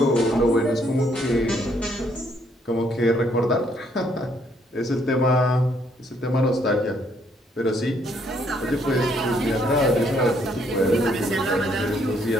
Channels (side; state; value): both; normal; correlation 0.69